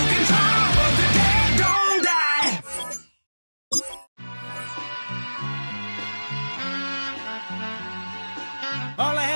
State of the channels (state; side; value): inverted; both; correlation -1.00